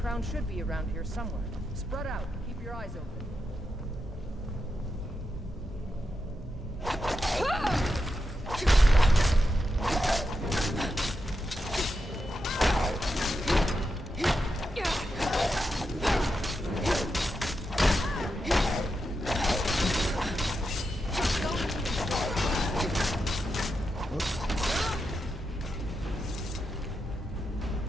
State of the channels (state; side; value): normal; both; correlation 0.86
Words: should be around here somewhere. Spread out. Keep your eyes open. Ah!